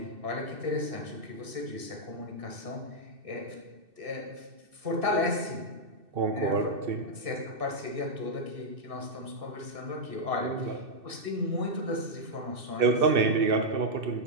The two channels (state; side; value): late; left; 2.6 ms